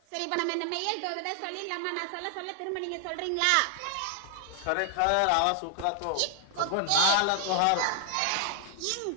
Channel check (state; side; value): different; both; correlation 0.00